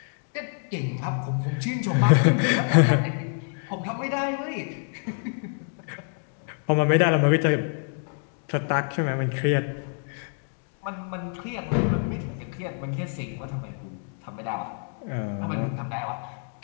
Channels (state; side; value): silent; right; 55 dB below the other